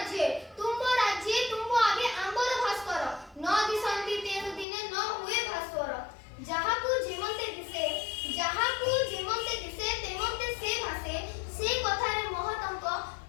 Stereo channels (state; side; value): drops out; right; at 4.7 s